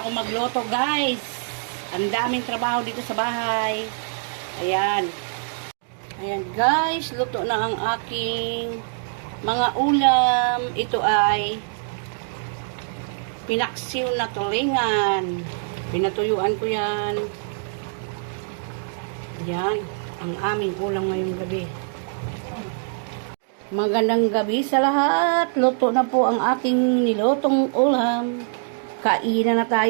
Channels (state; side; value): silent; left; digital silence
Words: ako magluto guys. Ang daming trabaho dito sa bahay. Ayan. Ayan guys, luto na ang aking mga ulam. Ito ay pinaksiw na tulingan. Pinatuyuan ko yan. Yan ang aming ulam ngayong gabi. Magandang gabi sa lahat. Luto na po ang aking nilutong ulam. Kainan na